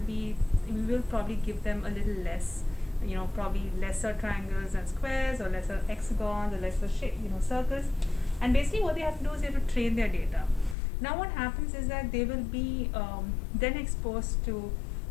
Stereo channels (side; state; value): right; drops out; at 10.8 s